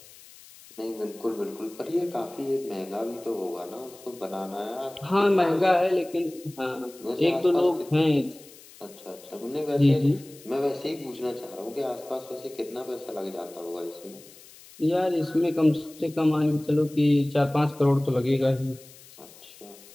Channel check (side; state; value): left; noise; hiss, 21 dB below the sound